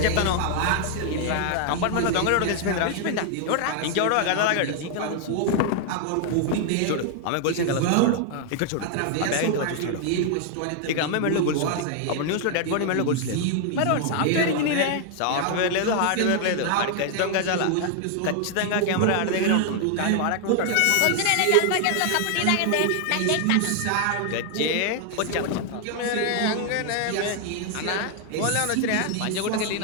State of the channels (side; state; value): both; different; correlation 0.00